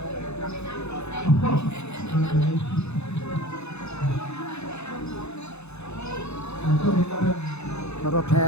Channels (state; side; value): late; right; 0.81 ms